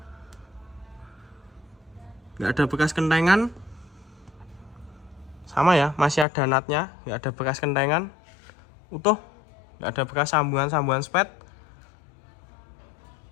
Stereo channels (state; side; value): drops out; right; at 6.2 s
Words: nggak ada bekas kentengan, sama ya, masih ada natnya, nggak ada bekas kentengan, utuh, nggak ada bekas sambungan spet,